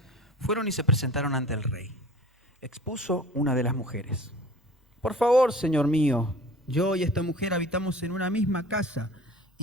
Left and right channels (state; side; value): normal; both; correlation 0.43